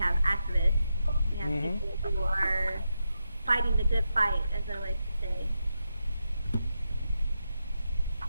activists. We have people who are fighting the good fight, as I like to say.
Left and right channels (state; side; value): inverted; both; correlation -0.86